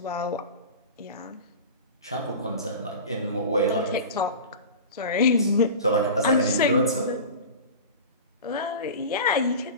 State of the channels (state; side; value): inverted; both; correlation -0.32